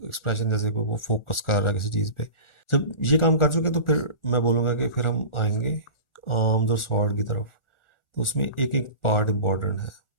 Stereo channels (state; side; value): late; right; 1.4 ms